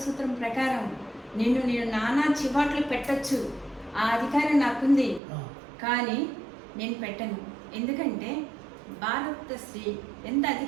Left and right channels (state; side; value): drops out; left; at 5.2 s